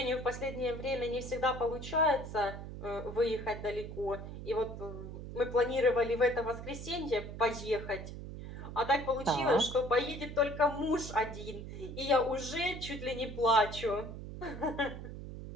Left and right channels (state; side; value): noise; right; hum, 9 dB below the sound